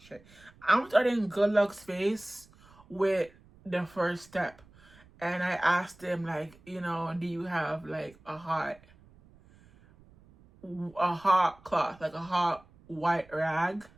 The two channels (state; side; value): noise; right; rumble, 26 dB below the sound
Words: I'm starting Good Luck's face with the first step. And I asked him, like, you know, do you have like a hot cloth, like a hot white rag,